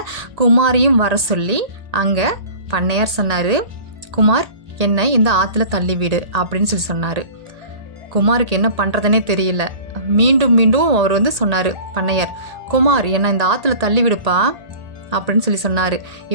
குமாரையும் வர சொல்லி அங்கே பண்ணையார் சொன்னார், குமார் என்னை இந்த ஆற்றுல தள்ளிவிடு அப்படின்னு சொல்லி சொன்னார். குமாருக்கு என்ன பண்ணுறதுனே தெரியல. மீண்டும் மீண்டும் அவர் சொன்னார் பண்ணையார், குமார் என்னை இந்த ஆற்றுல தள்ளிவிடுப்பா அப்படின்னு சொல்லி சொன்னார்.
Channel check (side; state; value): left; late; 1.8 ms